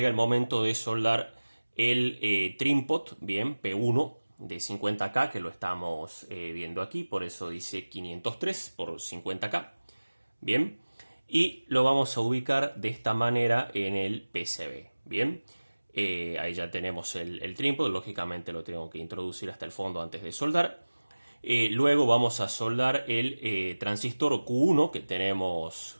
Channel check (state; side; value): inverted; both; correlation -1.00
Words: el momento de soldar el trim-pot, bien, P1 de 50K, que lo estamos viendo aquí, por eso dice 503 por 50K. Bien, y lo vamos a ubicar de esta manera en el PCB. Bien, ahí ya tenemos el trim-pot, lógicamente lo tengo que introducir hasta el fondo antes de soldar. Luego vamos a soldar el transistor Q1 que tenemos